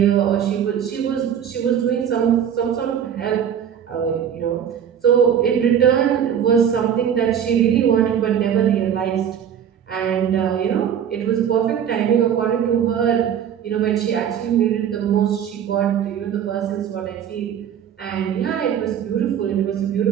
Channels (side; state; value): left; quieter; 8.8 dB